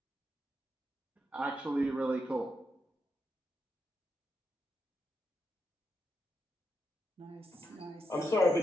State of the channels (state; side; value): normal; both; correlation 0.84